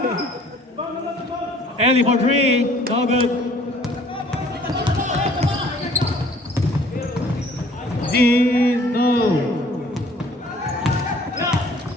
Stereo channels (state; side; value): normal; both; correlation 0.56